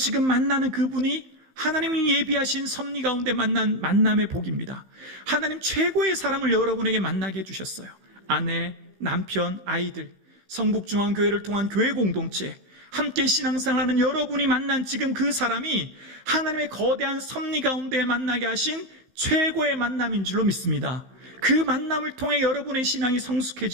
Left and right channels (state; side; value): late; left; 15 ms